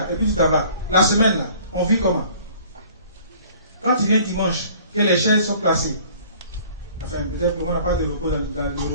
et puis tu t'en vas. La semaine là, on vit comment? Quand tu viens dimanche, que les chaises sont placées, enfin, peut-être qu'on n'a pas de repos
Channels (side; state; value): both; inverted; correlation -0.52